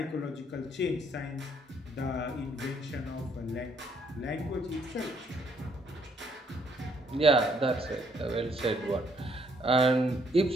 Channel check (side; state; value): both; normal; correlation 0.69